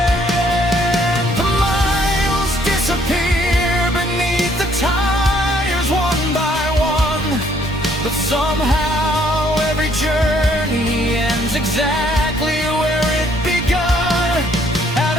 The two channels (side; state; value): both; normal; correlation 0.65